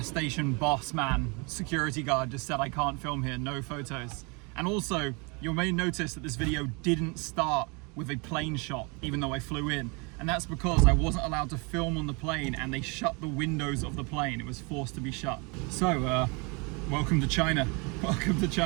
station boss man, security guard just said I can't film here, no photos. And also, you may notice that this video didn't start with a plane shot, even though I flew in. And that's because I wasn't allowed to film on the plane and they shut the windows of the plane. It was forced to be shut. So, welcome to China. Welcome to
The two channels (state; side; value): quieter; left; 30.4 dB